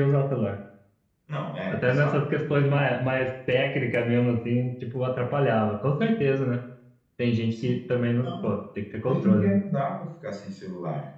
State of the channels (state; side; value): identical; both; correlation 1.00